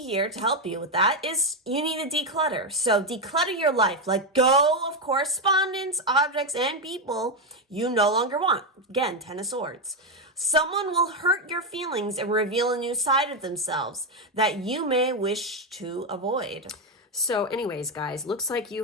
here to help you with that is you need to declutter. So declutter your life. Let go of correspondence, objects, and people you no longer want. Again, Ten of Swords. Someone will hurt your feelings and reveal a new side of themselves that you may wish to avoid. So anyways, guys, looks like you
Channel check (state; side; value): normal; both; correlation 0.06